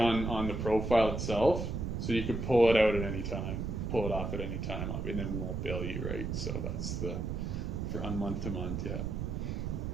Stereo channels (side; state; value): right; noise; rumble, 3 dB below the sound